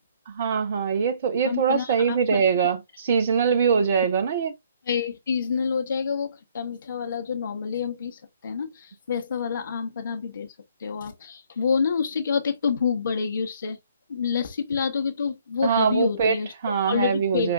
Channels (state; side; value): inverted; both; correlation -0.62